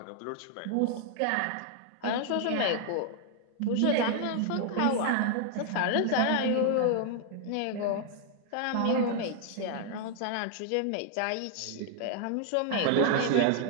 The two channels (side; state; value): both; different; correlation 0.00